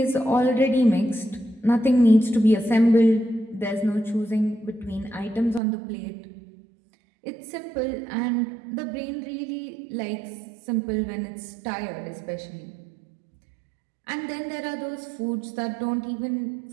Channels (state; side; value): drops out; left; at 5.6 s